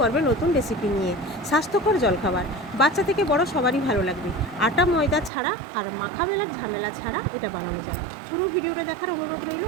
নতুন রেসিপি নিয়ে। স্বাস্থ্যকর জলখাবার, বাচ্চা থেকে বড় সবারই ভালো লাগবে। আটা ময়দা ছাড়া আর মাখা বেলার ঝামেলা ছাড়া এটা বানানো যায়। পুরো ভিডিওটা দেখার অনুরোধ রইল।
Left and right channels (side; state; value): left; drops out; at 5.3 s